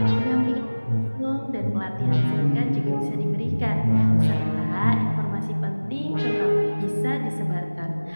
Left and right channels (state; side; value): inverted; both; correlation -1.00